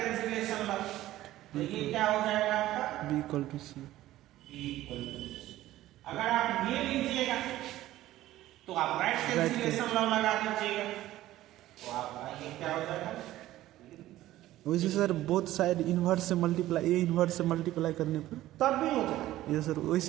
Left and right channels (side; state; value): left; quieter; 15.0 dB